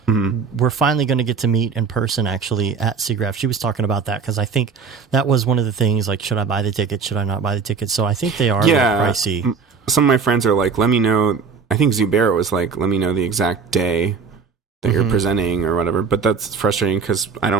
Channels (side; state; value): left; quieter; 5.4 dB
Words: we're finally going to get to meet in person actually at SIGGRAPH. She was talking about that because I think that was one of the things, like, should I buy the ticket? Should I not buy the ticket? So I think they are a little pricey. Some of my friends are like, let me know. I think Zubair was like, let me know the exact day that you're presenting or whatever, but that's frustrating because I